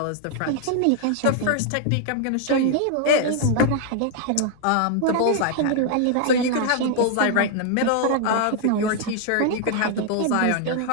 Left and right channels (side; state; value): both; different; correlation 0.00